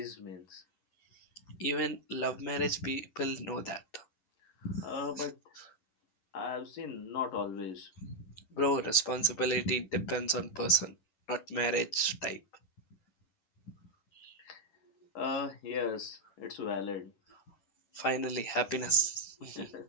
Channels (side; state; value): right; late; 10 ms